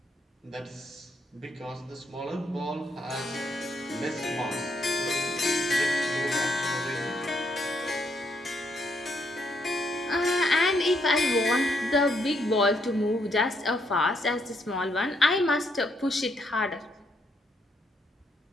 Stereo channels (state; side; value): normal; both; correlation 0.75